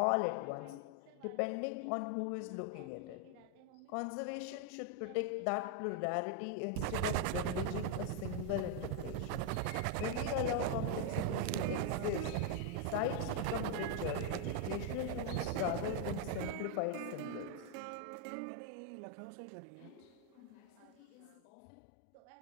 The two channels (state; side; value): different; both; correlation 0.01